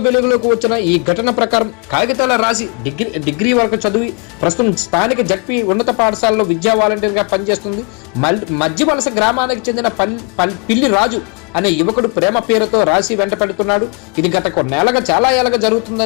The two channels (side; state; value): right; quieter; 34.5 dB